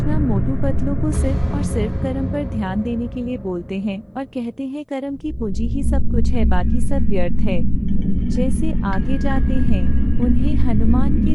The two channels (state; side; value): identical; both; correlation 1.00